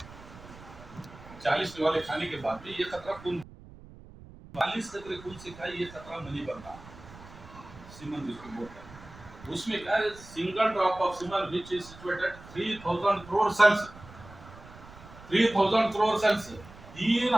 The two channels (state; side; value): noise; right; rumble, 19 dB below the sound